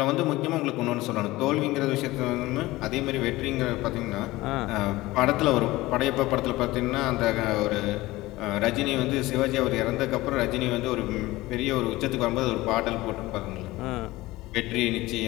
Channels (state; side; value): quieter; right; 18.9 dB